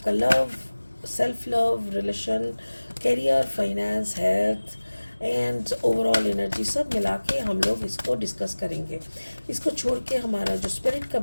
love, self love, relation, career, finance, health and overall energy सब मिला के हम लोग इसको डिस्कस करेंगे। इसको छोड़ के हमारा जो स्पिरिट का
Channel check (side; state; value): both; inverted; correlation -1.00